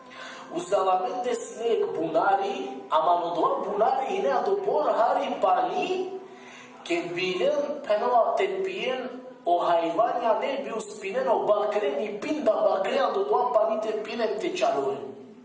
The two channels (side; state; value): both; identical; correlation 1.00